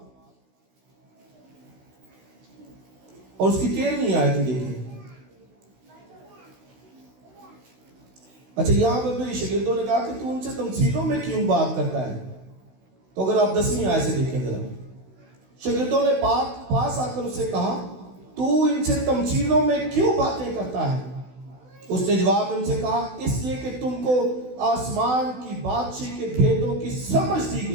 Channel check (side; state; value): left; late; 16 ms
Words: اور اس کی 13ویں آیت دیکھیں۔ اچھا، یہاں پہ میرے شاگردوں نے کہا کہ تو ان سے تمثیلوں میں کیوں بات کرتا ہے؟ تو اگر آپ 10ویں آیت سے دیکھیں ذرا، شاگردوں نے پاس آ کر اس سے کہا تو ان سے تمثیلوں میں کیوں باتیں کرتا ہے؟ اس نے جواب میں ان سے کہا اس لیے کہ تم کو آسمان کی بادشاہی کے بھیدوں کی سمجھ دی